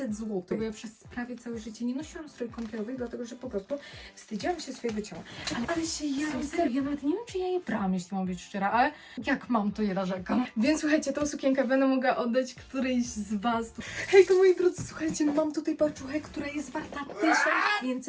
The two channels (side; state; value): both; identical; correlation 1.00